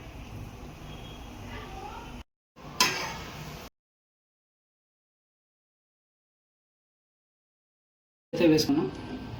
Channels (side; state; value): both; identical; correlation 1.00